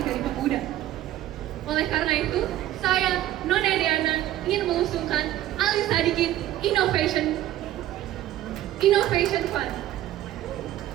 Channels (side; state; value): left; quieter; 13.5 dB